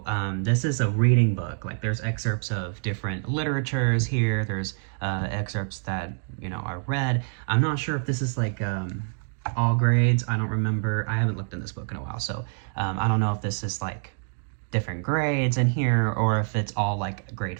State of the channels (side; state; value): left; silent; 61 dB below the other